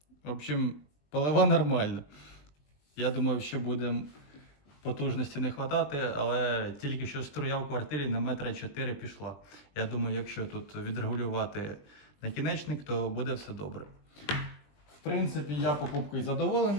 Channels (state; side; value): late; right; 20 ms